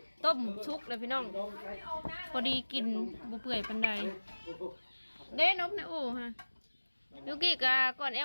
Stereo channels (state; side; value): inverted; both; correlation -1.00